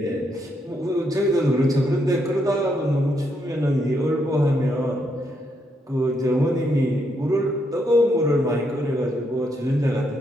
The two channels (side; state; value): both; normal; correlation 0.77